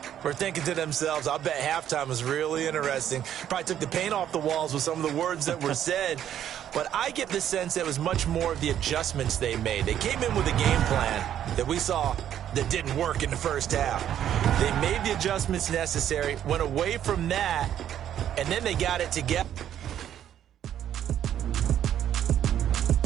were thinking to themselves, I'll bet halftime was really interesting. Probably took the paint off the walls with some of the words that were said. But I get the sense that it was much more of the adjustments they made. They came in with a game plan that we saw that didn't work in the first half. They made the adjustments necessary, went away from that, and then they got it together.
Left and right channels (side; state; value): left; quieter; 10.4 dB